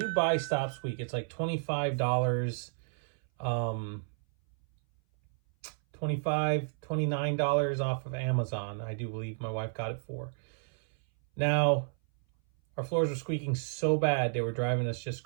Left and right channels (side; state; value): left; silent; 57 dB below the other